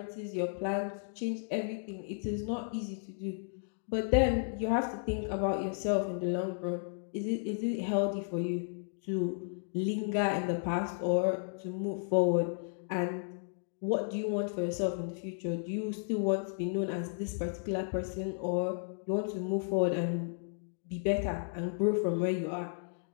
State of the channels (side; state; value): right; silent; digital silence